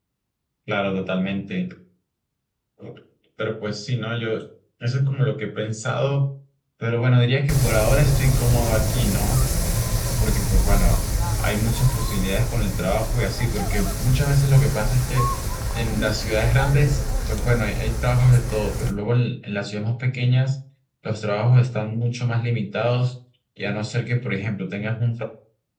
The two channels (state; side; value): identical; both; correlation 1.00